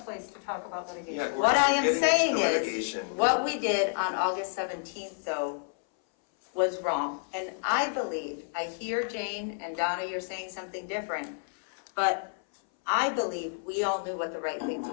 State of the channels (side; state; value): right; silent; 58 dB below the other